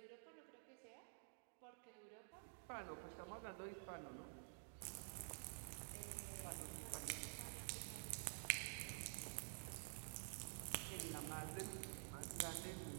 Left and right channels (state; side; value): silent; left; digital silence